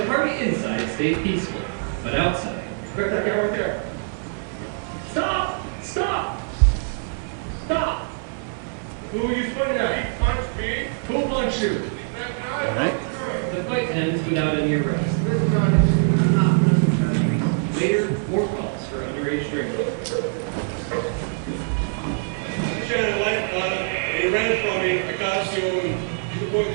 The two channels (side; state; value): left; silent; digital silence